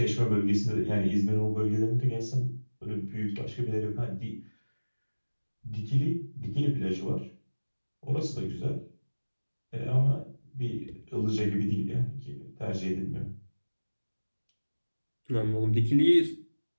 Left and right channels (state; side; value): inverted; both; correlation -1.00